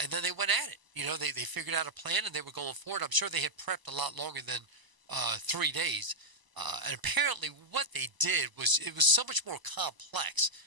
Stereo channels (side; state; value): left; late; 1.0 ms